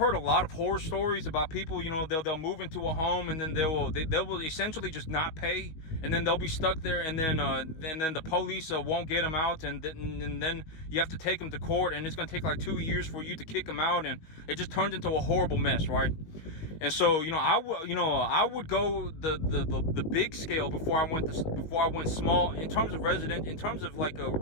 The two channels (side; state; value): right; late; 18 ms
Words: a lot of horror stories about people, you know, they'll move into a home, and then they will essentially just not pay, and then they'll be stuck there, and then the police won't get them out, and then you have to take them to court, and it's going to take like 2 years for you to kick them out, and it just turns into a horrible mess, right? And so, you know, I would go the big scale before I went small in terms of resident, in terms of like a